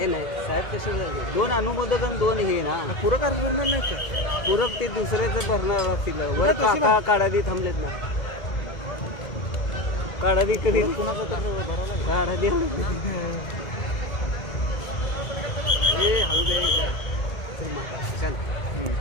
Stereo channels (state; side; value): late; right; 2.1 ms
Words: नाही साहेब, तसे दोन अनुमोदक आणि दोन हे ना पूरक अर्ज भरणार नाही का? पूरक ते दुसऱ्याचं भरणार असतील. वर काका काढादी थांबलेत ना, काढादी कधी काढादी हे चल